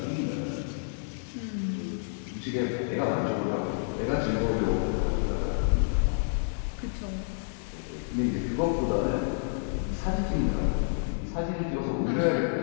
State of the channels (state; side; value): silent; right; digital silence